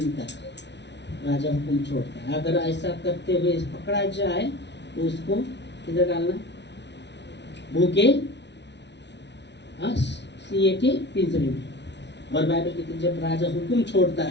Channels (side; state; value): right; late; 0.51 ms